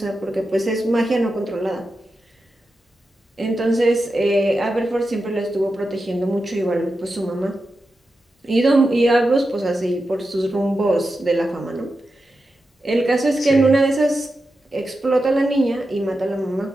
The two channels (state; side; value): normal; both; correlation 0.90